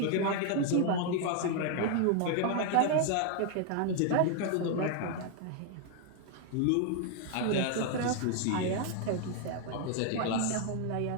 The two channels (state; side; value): different; both; correlation 0.00